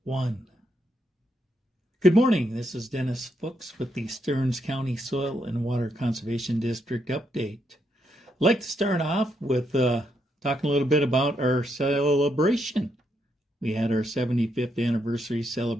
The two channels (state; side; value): normal; both; correlation 0.78